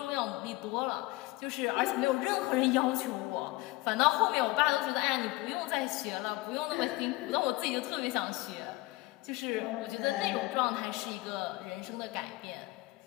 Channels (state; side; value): quieter; right; 20.8 dB